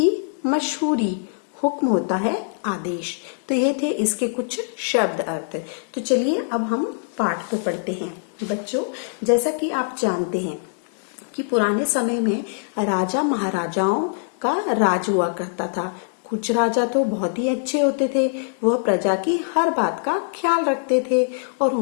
मशहूरी। हुक्म होता है आदेश। तो ये थे इसके कुछ शब्द अर्थ। तो चलिए अब हम पाठ को पढ़ते हैं। बच्चों, जैसा कि आप जानते हैं कि पुराने समय में राजा महाराजाओं का राज हुआ करता था। कुछ राजा तो बहुत ही अच्छे होते थे, वह प्रजा की हर बात का ख्याल रखते थे और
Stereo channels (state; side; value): silent; right; digital silence